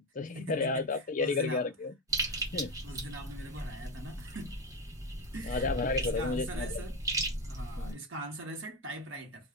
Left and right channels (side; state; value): both; normal; correlation 0.15